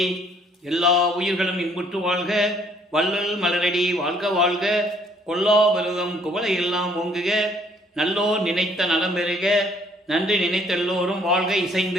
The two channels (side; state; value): both; normal; correlation 0.63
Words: எல்லா உயிர்களும் இன்புற்று வாழ்க, வள்ளல் மலரடி வாழ்க வாழ்க, கொல்லா பருவம் குவளை எல்லாம் ஓங்குக, நல்லோர் நினைத்த நலம் பெறுக, நன்றி நினைத்த எல்லோரும் வாழ்க